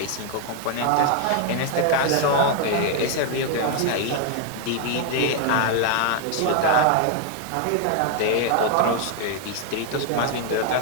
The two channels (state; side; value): different; both; correlation 0.00